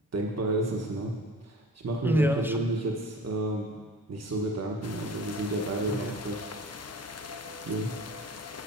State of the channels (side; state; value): both; normal; correlation 0.42